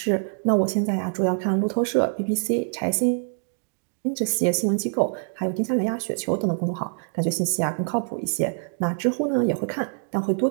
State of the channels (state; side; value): silent; left; digital silence